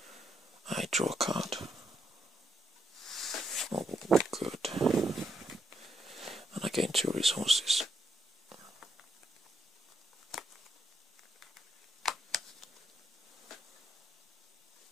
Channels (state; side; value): normal; both; correlation 0.79